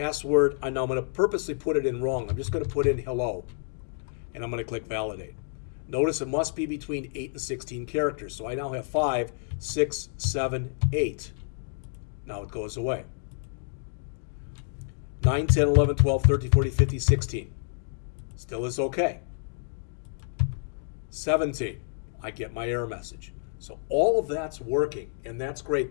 Now I'm going to purposely put it in wrong. I'm just going to put in hello, and I'm going to click validate. Notice it must be between 8 and 16 characters. So I now have 5, 6, 7, 8. Now it goes away. 9, 10, 11, 12, 13, 14, 15, 16. Still is okay. 17. I get my error message. So all of that's working, and that's great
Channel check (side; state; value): right; silent; 59 dB below the other